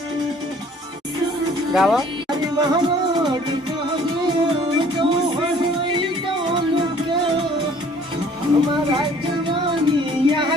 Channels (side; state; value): both; normal; correlation 0.55